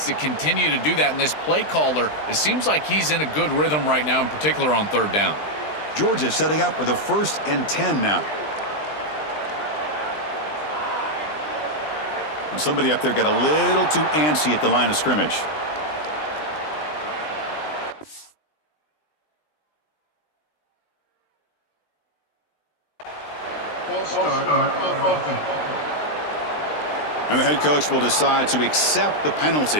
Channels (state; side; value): late; right; 20 ms